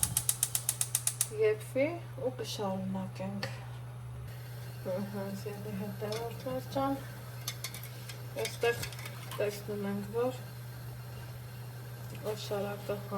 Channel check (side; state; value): both; identical; correlation 1.00